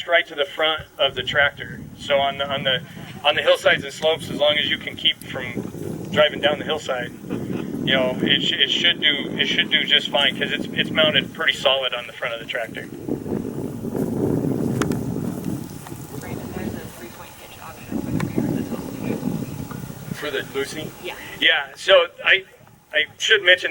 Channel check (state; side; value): identical; both; correlation 1.00